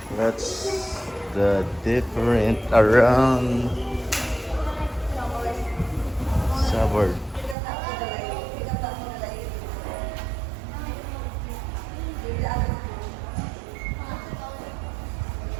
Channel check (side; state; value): left; drops out; at 7.6 s